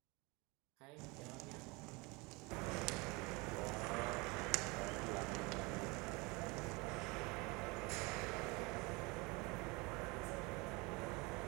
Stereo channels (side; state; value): left; quieter; 26.3 dB